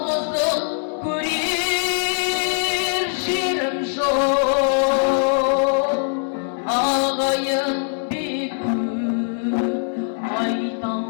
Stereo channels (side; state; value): right; silent; digital silence